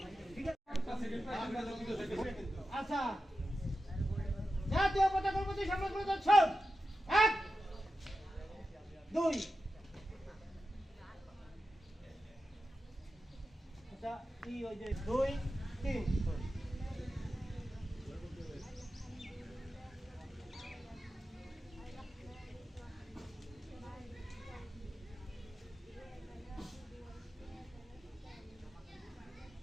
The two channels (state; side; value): normal; both; correlation 0.91